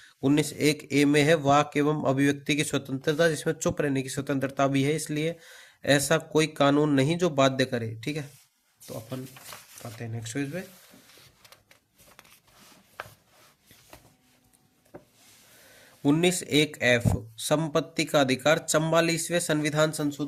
19(1)(a) में है वाक एवं अभिव्यक्ति की स्वतंत्रता, जिसमें चुप रहने की स्वतंत्रता भी है, इसलिए ऐसा कोई कानून नहीं जो बाध्य करे। ठीक है, तो अपन आते हैं नेक्स्ट पेज पे। 19(1)(f), संपत्ति का अधिकार। 44वें संविधान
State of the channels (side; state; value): both; identical; correlation 1.00